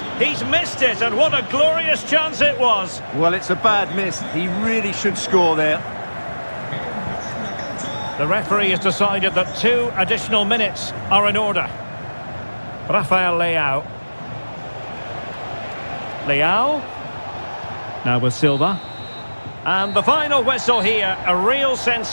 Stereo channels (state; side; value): inverted; both; correlation -1.00